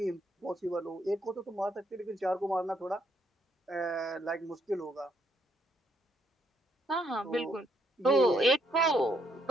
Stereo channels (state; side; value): normal; both; correlation 0.71